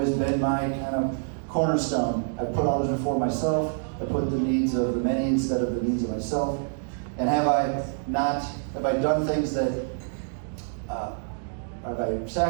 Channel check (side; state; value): left; silent; digital silence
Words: been my kind of cornerstone. I put others before myself. I put the needs of the many instead of the needs of myself. And have I done things that, have I